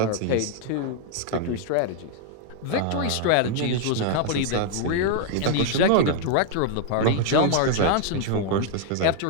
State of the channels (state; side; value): different; both; correlation 0.00